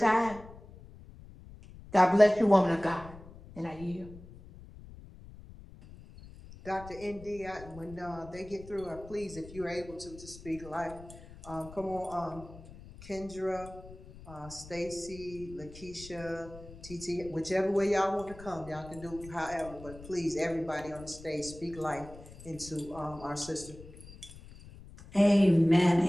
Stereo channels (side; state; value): left; noise; rumble, 17 dB below the sound